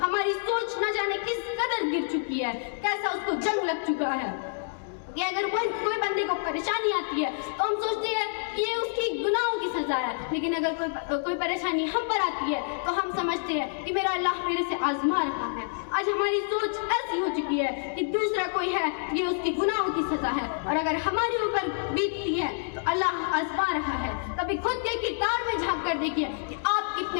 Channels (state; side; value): silent; right; digital silence